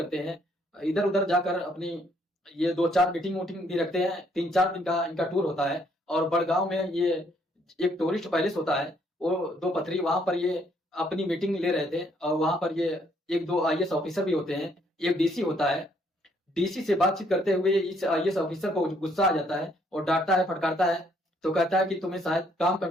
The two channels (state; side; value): normal; both; correlation 0.68